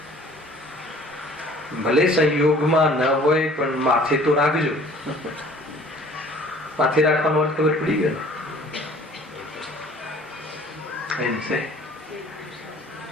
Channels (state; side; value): normal; both; correlation 0.51